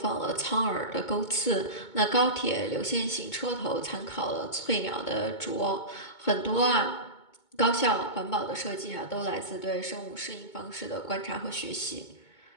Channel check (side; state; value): right; late; 2.2 ms